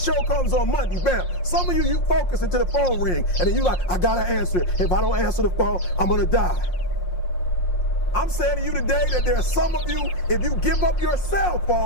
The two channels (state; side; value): late; right; 5.6 ms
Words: comes on Monday, bam, some of you focus until the phone ring, and then you like, I gotta answer it. If I don't answer the phone, I'm gonna die. I'm saying to you today that there are some of you, if you give up your cell